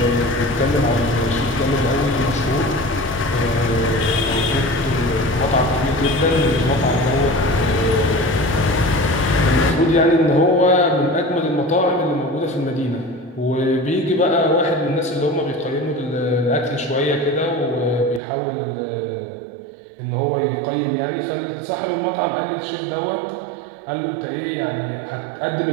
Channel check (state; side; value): drops out; left; at 18.2 s